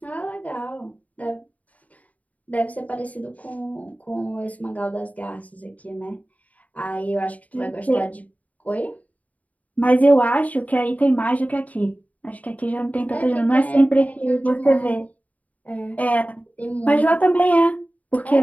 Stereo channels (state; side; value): late; right; 0.072 ms